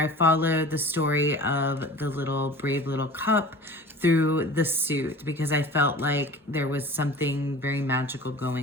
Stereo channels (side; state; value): both; normal; correlation 0.40